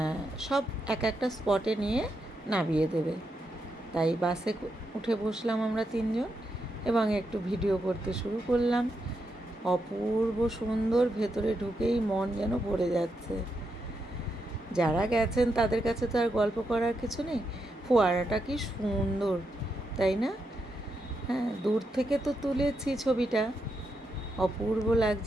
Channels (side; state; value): both; normal; correlation 0.83